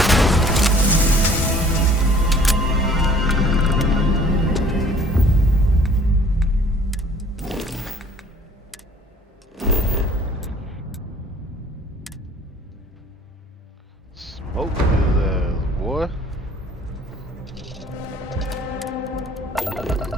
Smoke his ass, boy.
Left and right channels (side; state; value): both; normal; correlation 0.54